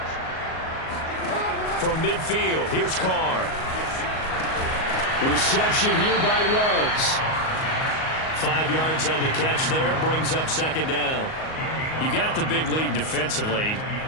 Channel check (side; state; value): right; late; 38 ms